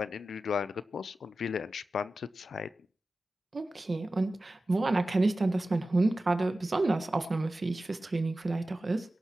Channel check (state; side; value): normal; both; correlation 0.95